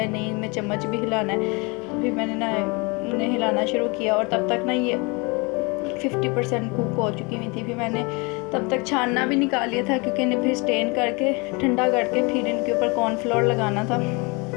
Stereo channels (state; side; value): quieter; right; 28.7 dB